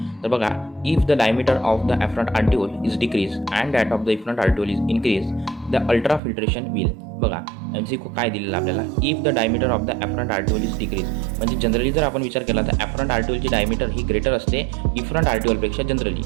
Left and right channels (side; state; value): left; drops out; at 6.2 s